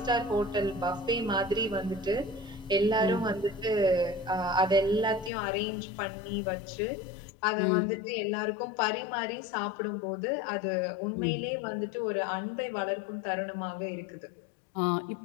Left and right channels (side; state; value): right; drops out; at 5.3 s